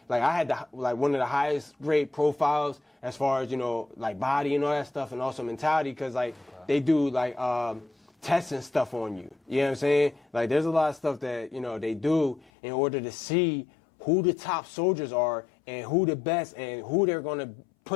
had one of the highest grade profiles as far as, body and all that stuff, and also mentality, because, they do, tests and stuff on you. You know what I'm saying? There's a lot of stuff that, they do in order to see who the top soldiers are and who the best and who they're going to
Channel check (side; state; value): right; drops out; at 12.5 s